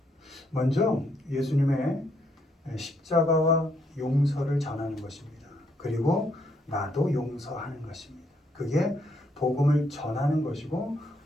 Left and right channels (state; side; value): normal; both; correlation 0.73